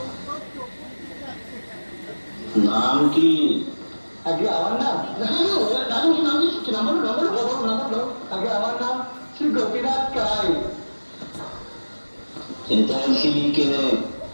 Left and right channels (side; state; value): both; inverted; correlation -1.00